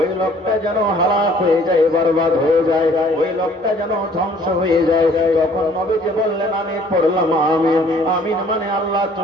লোকটা যেন হালাক হয়ে যায়, বরবাদ হয়ে যায়, ওই লোকটা যেন ধ্বংস হয়ে যায়। তখন নবীজি বললেন, আমি পড়লাম আমিন। আমিন মানে আল্লাহ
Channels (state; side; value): normal; both; correlation 0.57